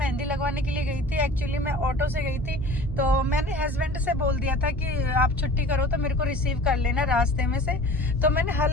लगवाने के लिए गई थी। एक्चुअली मैं ऑटो से गई थी, तो मैंने हस्बैंड से बोल दिया था कि आप छुट्टी करो तो मेरे को रिसीव कर लेना रास्ते में से। तो मैंने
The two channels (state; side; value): noise; left; hum, 12 dB below the sound